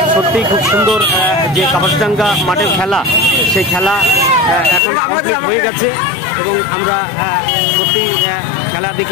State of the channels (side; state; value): right; drops out; at 4.8 s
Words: সত্যি খুব সুন্দর যে কাপাসডাঙ্গা মাঠের খেলা, সেই খেলা এখন কমপ্লিট হয়ে গেছে এবং আমরা সত্যি খেলা